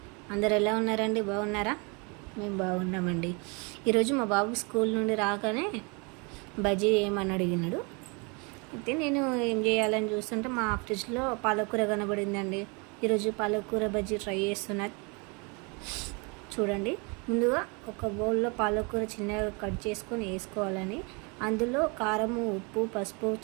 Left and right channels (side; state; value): left; quieter; 31.4 dB